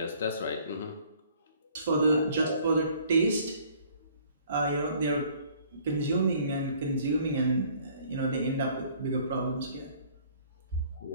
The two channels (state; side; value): inverted; both; correlation -0.57